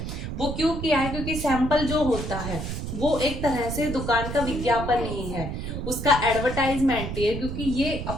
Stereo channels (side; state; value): right; noise; rumble, 5 dB below the sound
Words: वो क्यों किया है, क्योंकि सैंपल जो होता है वो एक तरह से दुकान का विज्ञापन ही है, उसका एडवर्टाइजमेंट ही है, क्योंकि ये